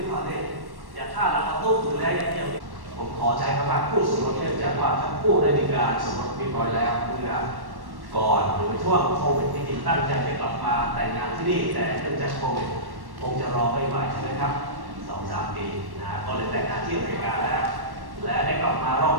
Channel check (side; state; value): left; late; 1.1 ms